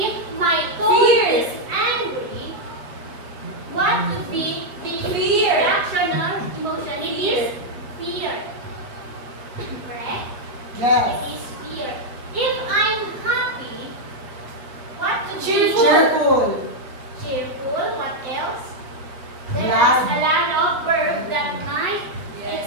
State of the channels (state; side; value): late; left; 7.8 ms